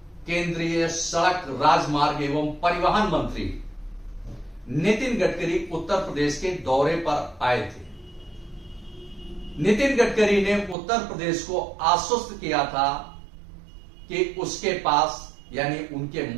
केंद्रीय सड़क, राजमार्ग एवं परिवहन मंत्री नितिन गडकरी उत्तर प्रदेश के दौरे पर आए थे। नितिन गडकरी ने उत्तर प्रदेश को आश्वस्त किया था कि उसके पास यानी उनके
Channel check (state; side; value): drops out; left; at 10.8 s